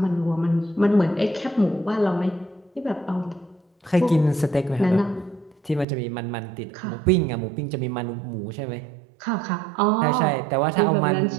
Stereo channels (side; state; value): left; drops out; at 5.9 s